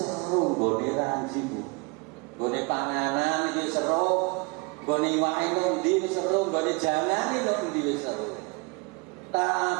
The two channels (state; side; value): quieter; left; 28.8 dB